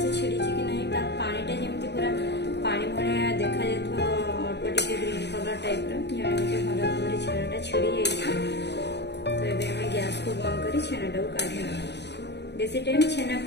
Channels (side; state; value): right; late; 0.50 ms